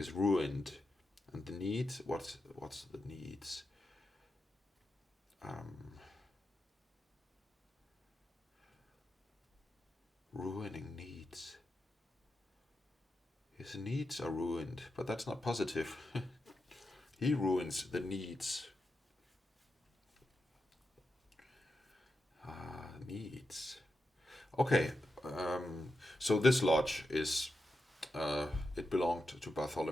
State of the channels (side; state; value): both; normal; correlation 0.88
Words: ruined. And the needs, what's the needs? Ruining needs. His needs are ruined, but that's not positive. He ruins the needs. Needs. Okay, so this lodge is it belonged to